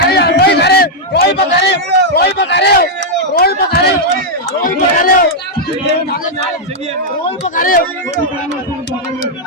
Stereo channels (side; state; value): both; normal; correlation -0.03